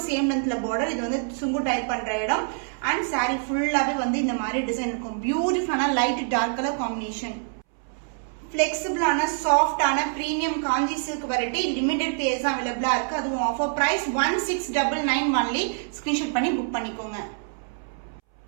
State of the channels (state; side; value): silent; left; 61 dB below the other